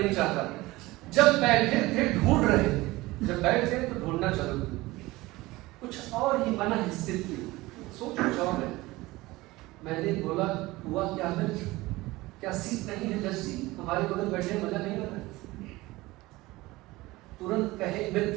चाहता। जब बैठे थे ढूंढ रहे, जब बैठे तो ढूंढना चलो, कुछ और ही मन स्थित थी, सोच कुछ और है। मैंने बोला, हुआ क्या मित्र, क्या सीट नहीं है जज जी, हमारे बगल बैठे मजा नहीं आ रहा? तुरंत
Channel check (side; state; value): left; quieter; 19.9 dB